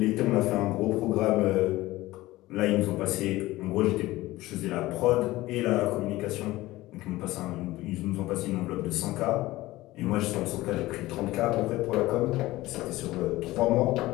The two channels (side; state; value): right; quieter; 18.0 dB